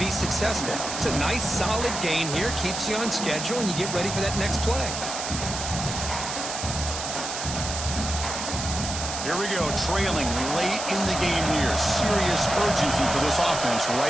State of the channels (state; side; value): noise; right; hiss, 5 dB below the sound